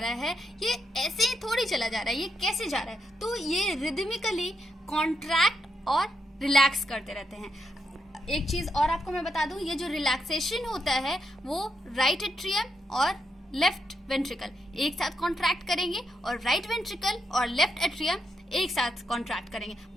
है ये ऐसे ही थोड़ी चला जा रहा है, ये कैसे जा रहा है? तो ये रिदमिकली कॉन्ट्रैक्ट और रिलैक्स करते रहते हैं। एक चीज और आपको मैं बता दूं, ये जो रिलैक्सेशन होता है वो राइट एट्रियम और लेफ्ट वेंट्रिकल एक साथ कॉन्ट्रैक्ट करेंगे और राइट वेंट्रिकल और लेफ्ट एट्रियम एक साथ कॉन्ट्रैक्ट करेंगे।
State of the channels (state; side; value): normal; both; correlation 0.82